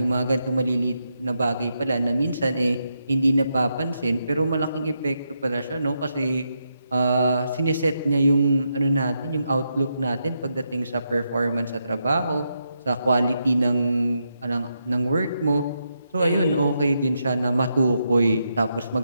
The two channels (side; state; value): both; inverted; correlation -0.83